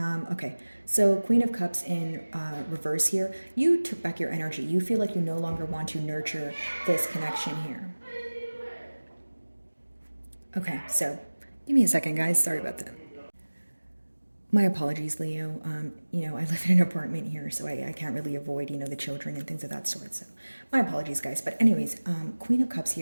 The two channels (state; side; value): inverted; both; correlation -1.00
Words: Okay, so Queen of Cups in reverse here. You took back your energy. You feel like you no longer want to nurture this connection here. Okay, so give me a second, guys. Sorry about that. My apologies, Leo. I live in an apartment here, so I can't really avoid, the children and things of that sort. So my apologies, guys. But anyways, Queen of Cups